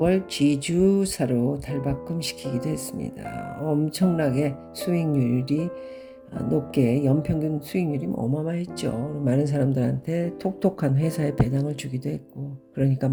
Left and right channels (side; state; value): both; identical; correlation 1.00